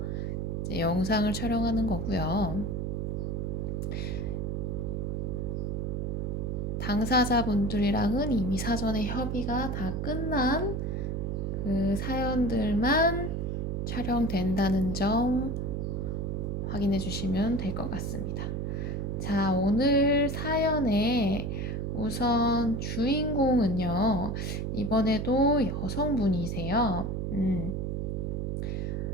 이제 영상을 촬영하는 거고요. 당사자분들이랑은 이미 사전에 협의가 다 끝난 그 사연들만 촬영된다는 점 확인해 주시면 될 것 같습니다. 자, 오늘 사연의 우선 주인공은요, 이번에도 여성분이세요.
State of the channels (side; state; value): right; noise; hum, 1 dB below the sound